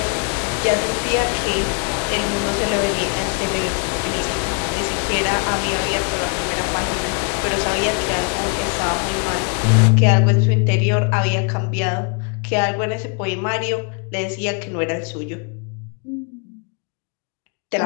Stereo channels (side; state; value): right; quieter; 36.6 dB